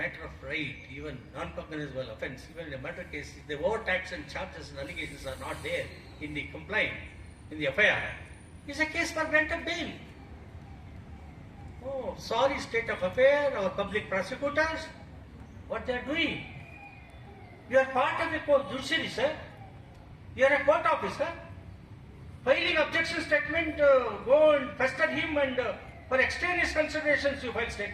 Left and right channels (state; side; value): identical; both; correlation 1.00